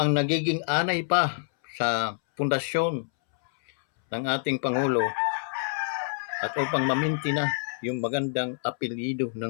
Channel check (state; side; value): silent; right; 60 dB below the other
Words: nagiging anay pa sa pundasyon ng ating Pangulo at upang maminti na yung magandang apelyido